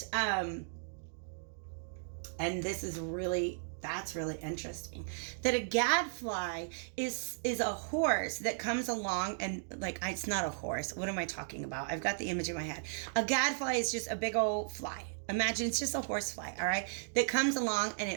and this is really, that's really interesting, that a gadfly is a horse that comes along and like, it's not a horse. What am I talking about? I've got the image in my head. A gadfly is just a big old fly. Imagine it's just a horsefly, all right, that comes along and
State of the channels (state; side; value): silent; left; digital silence